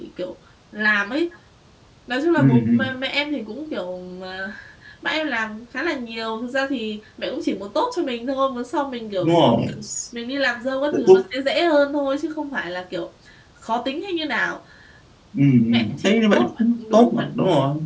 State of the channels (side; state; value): both; identical; correlation 1.00